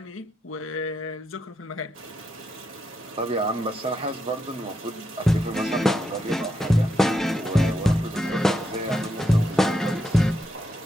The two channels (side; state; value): both; normal; correlation 0.82